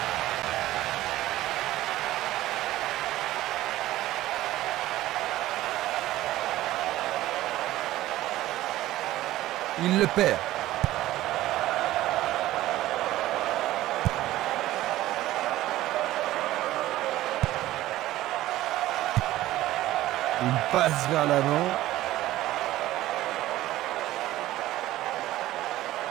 Il le perd. Il passe vers l'avant.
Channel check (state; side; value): quieter; left; 15.4 dB